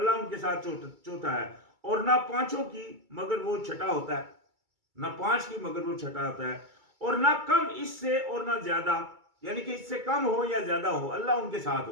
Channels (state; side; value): late; left; 2.3 ms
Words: ان کے ساتھ چوتھا ہے، اور نہ پانچوں کی مگر وہ چھٹا ہوتا ہے، نہ پانچ کی مگر وہ چھٹا ہوتا ہے، اور نہ کم اس سے اور نہ زیادہ، یعنی کہ اس سے کم ہو یا زیادہ ہو اللہ ان کے ساتھ